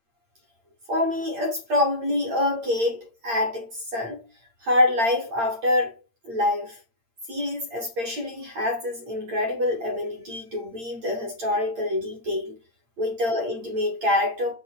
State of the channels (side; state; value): left; late; 8.7 ms